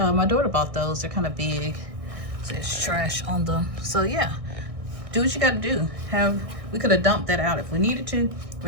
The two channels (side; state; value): left; late; 1.6 ms